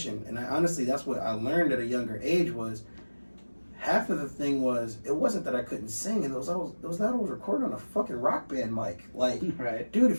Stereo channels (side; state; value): both; inverted; correlation -1.00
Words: And honestly, that's what I learned at a younger age was. Half of the thing was, it wasn't that I couldn't sing, it was that I was recording on a fucking rock band mic. Like, right. Dude,